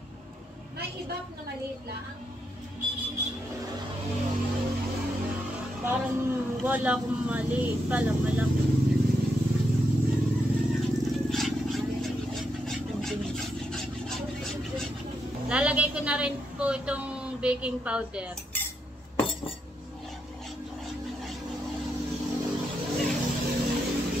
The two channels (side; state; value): both; normal; correlation 0.81